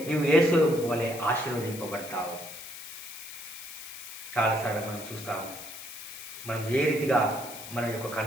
నువ్వు యేసు వలె ఆశీర్వదింపబడతావు. చాలాసార్లు మనం చూస్తాము, మనం ఏ రీతిగా మన యొక్క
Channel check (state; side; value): noise; left; hiss, 11 dB below the sound